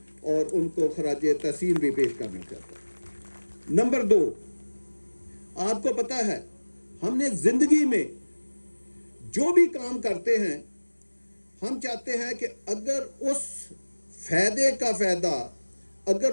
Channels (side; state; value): both; inverted; correlation -1.00